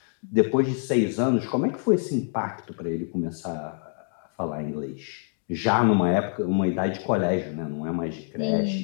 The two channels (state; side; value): silent; right; 61 dB below the other